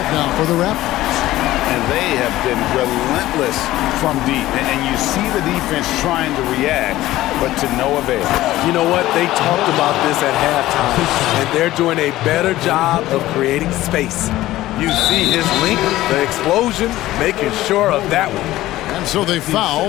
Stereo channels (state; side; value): quieter; right; 15.8 dB